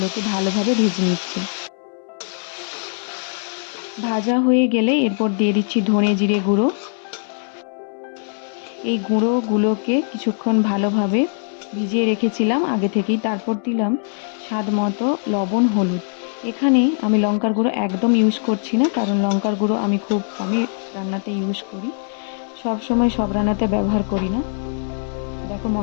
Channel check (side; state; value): right; silent; 65 dB below the other